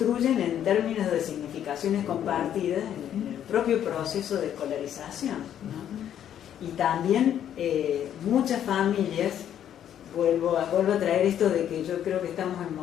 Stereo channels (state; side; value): quieter; right; 10.1 dB